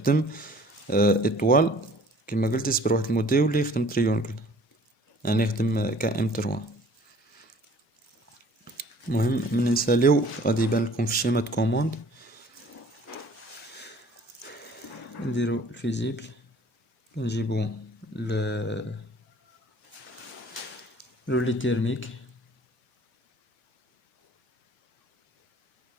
ايطوال كما قلت، يصبر واحد المده يولي يخدم تريونكل، يعني يخدم KM3. المهم من نساليو غادي يبان لكم في الشيمات كوموند. نديرو الفيزيبل، كنجيبو لي تيرميك،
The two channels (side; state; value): both; normal; correlation 0.52